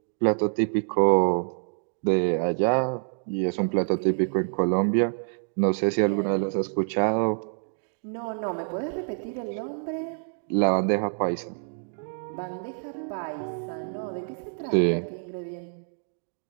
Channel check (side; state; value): left; silent; digital silence